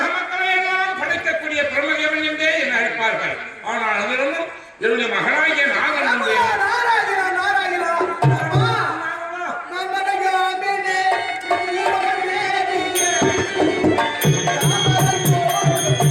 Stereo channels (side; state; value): both; identical; correlation 1.00